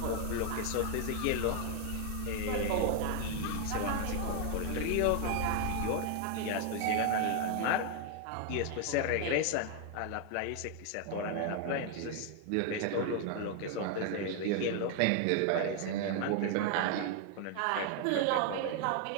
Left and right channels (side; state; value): both; different; correlation 0.00